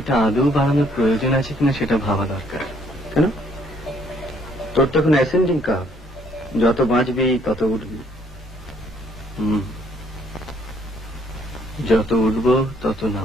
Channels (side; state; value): both; normal; correlation 0.65